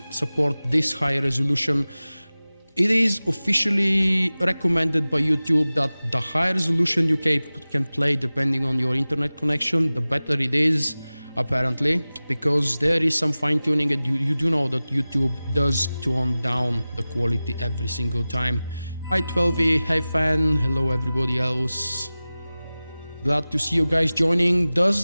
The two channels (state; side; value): inverted; both; correlation -0.97